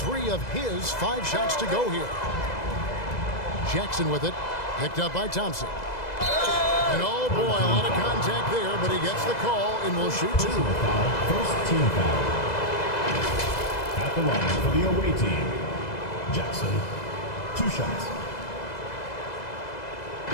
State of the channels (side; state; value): right; late; 2.0 ms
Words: of his 5 shots to go here. Jackson with it. Picked up by Thompson. And oh boy, a lot of contact there, but he gets the call and will shoot 2. First team foul. At the line for the away team, Jackson, 2 shots.